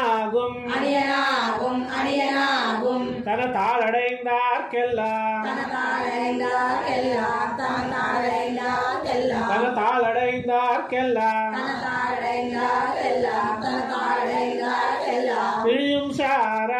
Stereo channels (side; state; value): both; identical; correlation 1.00